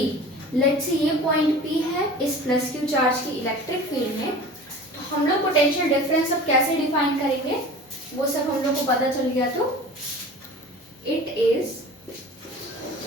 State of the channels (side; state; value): both; normal; correlation 0.39